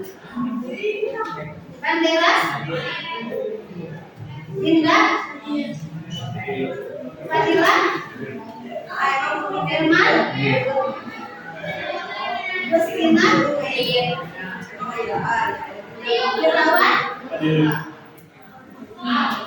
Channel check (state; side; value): identical; both; correlation 1.00